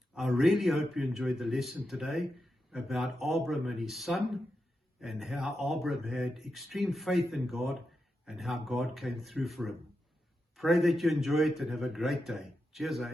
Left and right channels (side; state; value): both; normal; correlation 0.88